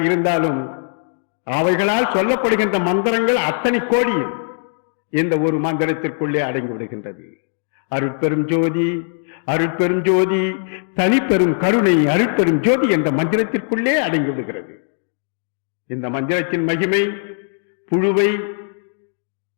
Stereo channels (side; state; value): right; silent; digital silence